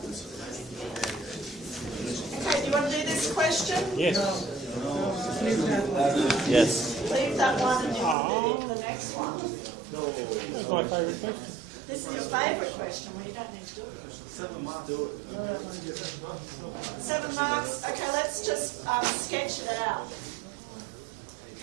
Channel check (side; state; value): left; drops out; at 8.2 s